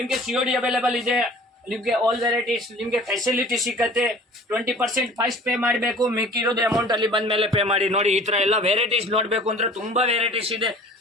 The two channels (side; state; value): both; normal; correlation 0.46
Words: COD ಅವೈಲೇಬಲ್ ಇದೆ. ನಿಮ್ಗೆ ಆಲ್ ವೆರೈಟೀಸ್ ನಿಮ್ಗೆ ಫೆಸಿಲಿಟಿ ಸಿಕ್ಕತ್ತೆ. 20% ಫಸ್ಟ್ ಪೇ ಮಾಡಬೇಕು, ಮಿಕ್ಕಿರೋದು ಅಮೌಂಟ್ ಅಲ್ಲಿ ಬಂದ ಮೇಲೆ ಪೇ ಮಾಡಿ. ನೋಡಿ ಈ ತರ ಎಲ್ಲ ವೆರೈಟೀಸ್ ನೋಡ್ಬೇಕು ಅಂದ್ರೆ ತುಂಬಾ ವೆರೈಟೀಸ್ ಇದೆ.